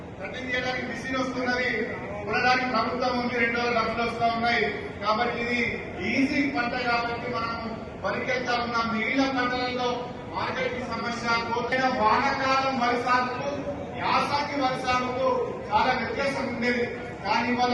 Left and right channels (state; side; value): identical; both; correlation 1.00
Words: కటింగ్ చేయడానికి మిషన్ వస్తున్నది, కొనడానికి ప్రభుత్వం ఉంది, 2 డబ్బులు వస్తా ఉన్నాయి. కాబట్టి ఇది ఈజీ పంట కాబట్టి మనం వరికి వెళ్తా ఉన్నాం. మిగిలిన పంటలలో మార్కెట్ సమస్య, కోతైన వానకాలం వరి సాగుకు యాసంగి వరి సాగుకు చాలా వ్యత్యాసం ఉండేది. కానీ ఇవాళ